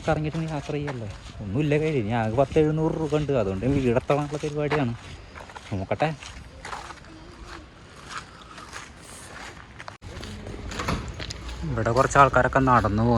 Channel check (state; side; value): identical; both; correlation 1.00